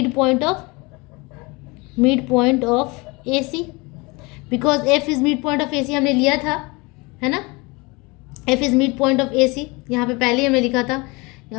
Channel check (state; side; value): quieter; right; 26.0 dB